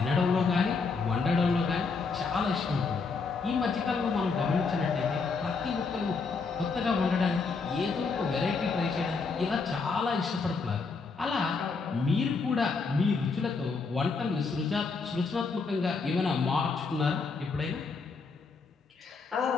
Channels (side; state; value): right; quieter; 4.6 dB